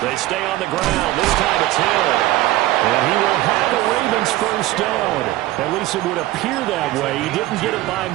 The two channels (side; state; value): left; quieter; 16.6 dB